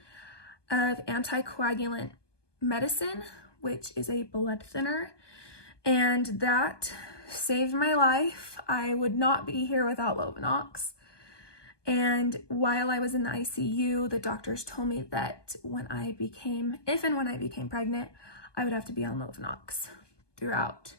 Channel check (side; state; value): right; late; 1.2 ms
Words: of anticoagulant medicine, which is a blood thinner, and that saved my life. I would not be here without Lovenox. And while I was in the ICU, the doctors told me that if and when I became pregnant, I would have to be on Lovenox throughout